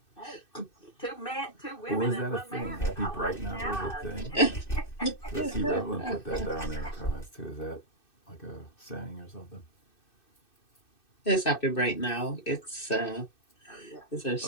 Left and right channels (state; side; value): late; right; 2.6 ms